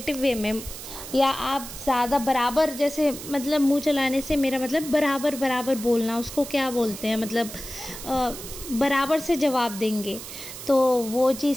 वे में, या आप ज़्यादा बराबर, जैसे मतलब मुंह चलाने से मेरा मतलब बराबर बराबर बोलना, उसको क्या बोलते हैं, मतलब बराबर से जवाब देंगे, तो वो चीज़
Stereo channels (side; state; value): right; noise; hiss, 11 dB below the sound